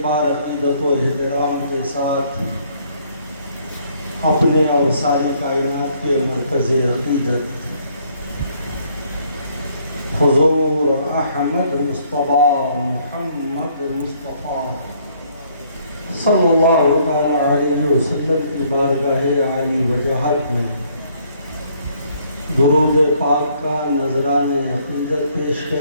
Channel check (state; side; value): inverted; both; correlation -0.65